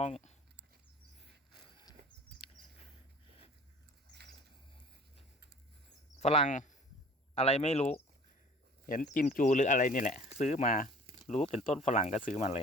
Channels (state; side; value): normal; both; correlation 0.47